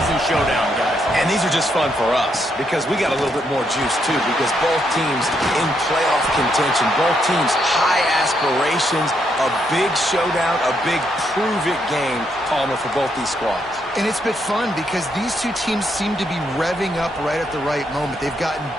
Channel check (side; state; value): both; normal; correlation 0.77